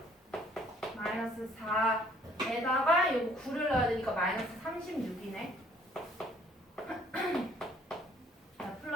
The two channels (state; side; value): normal; both; correlation 0.60